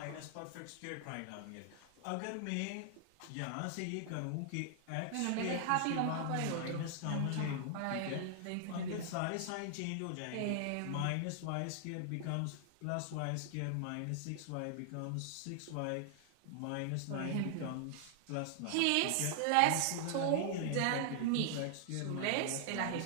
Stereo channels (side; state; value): both; different; correlation 0.00